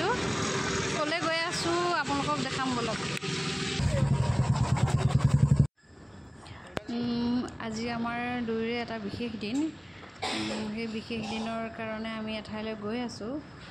ক'লৈ গৈ আছোঁ আপোনালোকক দেখাম বলক। আজি আমাৰ দুয়োৰে এটা বিশেষ দিন। সেই বিশেষ দিনৰ কাৰণে আমি এঠাইলৈ গৈ আছোঁ।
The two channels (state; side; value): identical; both; correlation 1.00